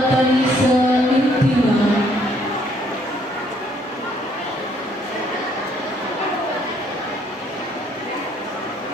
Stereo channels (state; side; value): normal; both; correlation 0.66